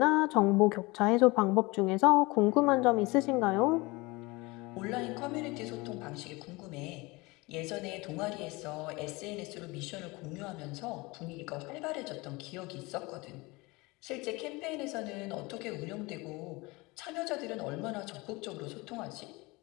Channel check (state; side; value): quieter; right; 23.8 dB